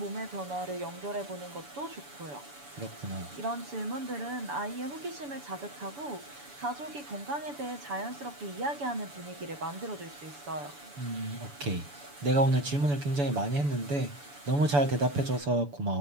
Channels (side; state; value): left; late; 7.0 ms